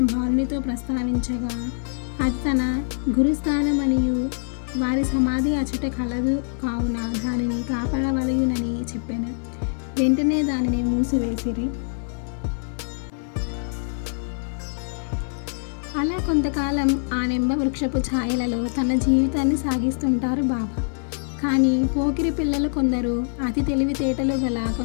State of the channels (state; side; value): silent; right; 63 dB below the other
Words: బాలునితో ప్రస్తావించగా అది తన గురుస్థానమనియు వారి సమాధి అచట కలదు కావున దానిని కాపాడవలయునని చెప్పాను. వెంటనే దానిని మూసివేసిరి. అలా కొంతకాలం ఆ నింబ వృక్షపు ఛాయలలో తన జీవితాన్ని సాగిస్తుంటారు బాబా. కానీ పోకిరి పిల్లలు కొందరు, అతి తెలివితేటలు గల